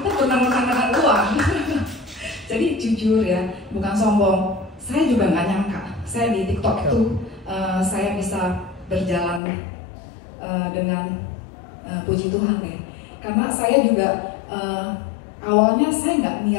benar-benar dengan uang. Jadi jujur ya, bukan sombong. Saya juga nggak nyangka. Saya di TikTok itu saya bisa berjalan dengan puji Tuhan ya. Karena saya juga awalnya saya nggak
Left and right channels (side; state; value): right; drops out; at 9.4 s